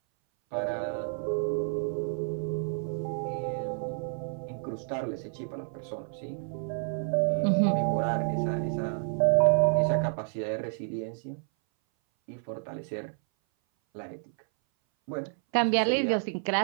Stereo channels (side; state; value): left; silent; 58 dB below the other